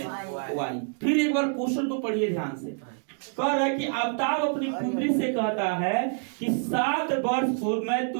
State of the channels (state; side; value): silent; left; 60 dB below the other